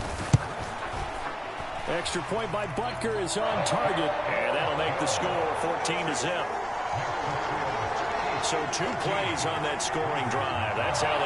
Extra point by Butker is on target. And that'll make the score 14-0. So 2 plays on that scoring drive. That's how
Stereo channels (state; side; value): identical; both; correlation 1.00